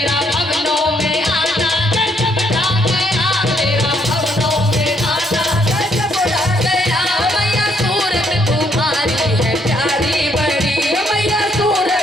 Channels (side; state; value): both; normal; correlation 0.71